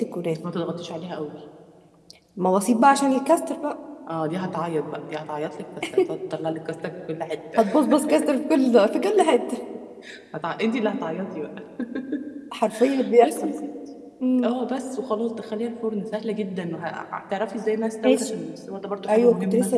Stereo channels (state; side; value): identical; both; correlation 1.00